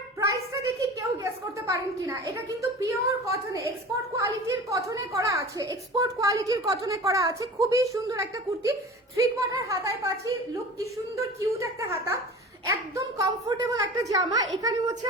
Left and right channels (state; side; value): normal; both; correlation 0.37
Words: প্রাইসটা দেখি কেউ গেস করতে পারেন কিনা। এটা কিন্তু পিওর কটনে, এক্সপোর্ট কোয়ালিটির কটনে করা আছে, এক্সপোর্ট কোয়ালিটির কটনে করা আছে। খুবই সুন্দর একটা কুর্তি, 3/4 হাতায় পাচ্ছি। লুক কি সুন্দর কিউট একটা হাতা, একদম কমফোর্টেবল একটা জামা। এখানে হচ্ছে